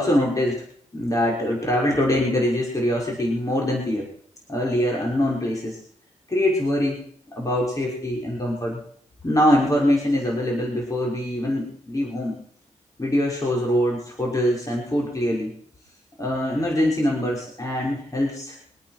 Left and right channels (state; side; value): normal; both; correlation 0.77